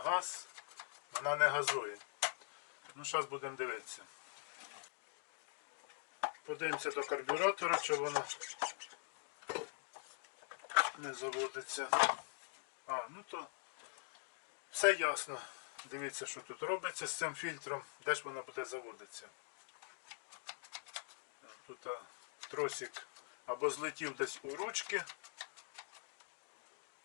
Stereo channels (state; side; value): silent; right; digital silence